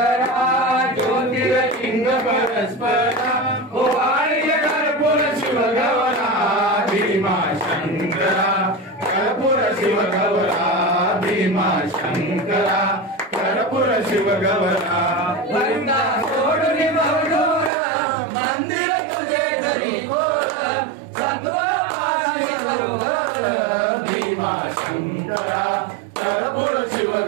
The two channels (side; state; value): left; drops out; at 17.7 s